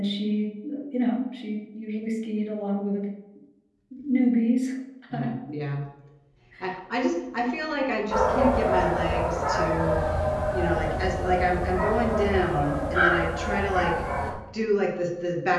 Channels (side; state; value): both; identical; correlation 1.00